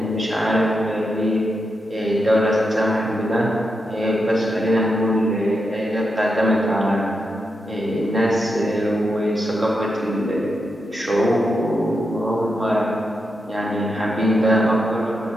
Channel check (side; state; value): both; normal; correlation 0.85